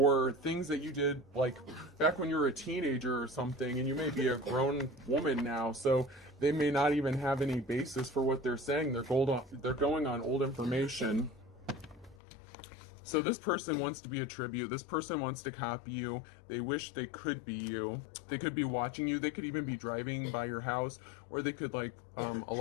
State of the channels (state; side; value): drops out; right; at 12.2 s